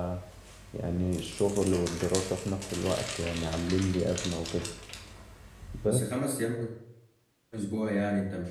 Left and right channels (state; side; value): identical; both; correlation 1.00